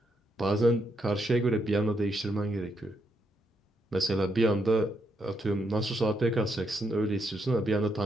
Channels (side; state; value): both; normal; correlation 0.78